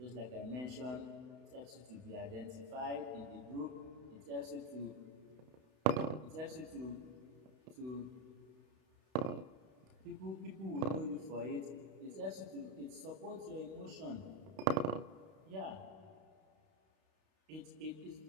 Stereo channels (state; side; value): late; left; 32 ms